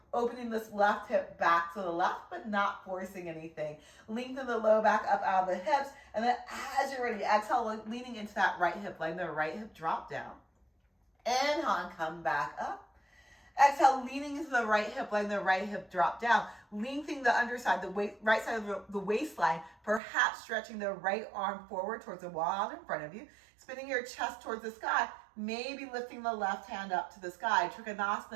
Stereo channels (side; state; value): left; drops out; at 20.0 s